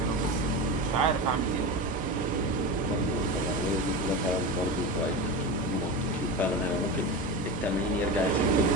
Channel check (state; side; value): normal; both; correlation 0.23